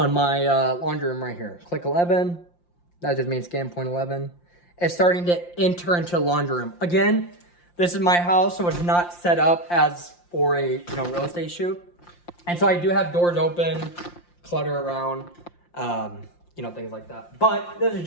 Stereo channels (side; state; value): right; late; 5.7 ms